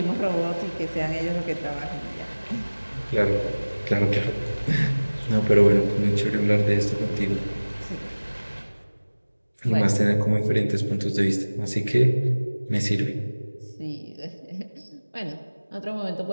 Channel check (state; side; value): inverted; both; correlation -1.00